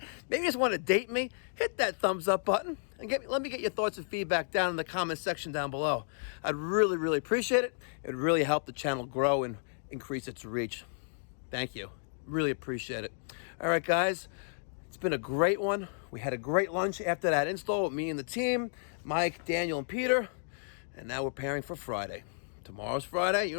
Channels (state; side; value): silent; right; digital silence